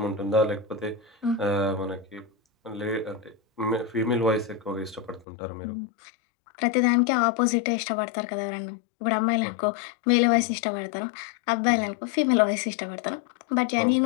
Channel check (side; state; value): right; drops out; at 5.2 s